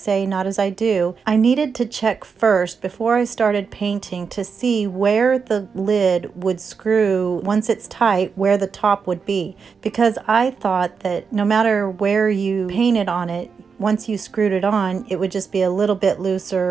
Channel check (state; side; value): quieter; left; 5.7 dB